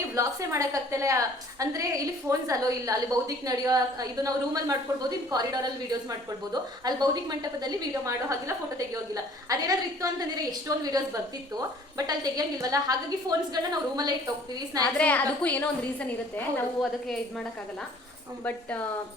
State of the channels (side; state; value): both; normal; correlation 0.54